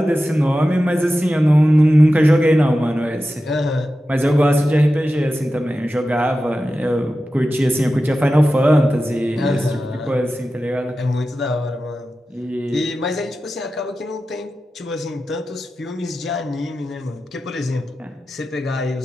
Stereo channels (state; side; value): normal; both; correlation 0.93